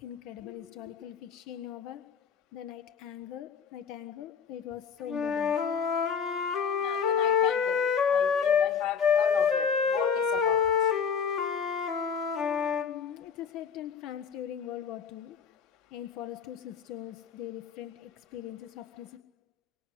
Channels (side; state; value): right; quieter; 6.6 dB